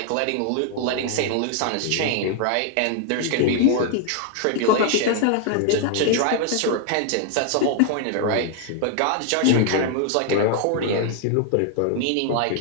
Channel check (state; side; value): different; both; correlation 0.00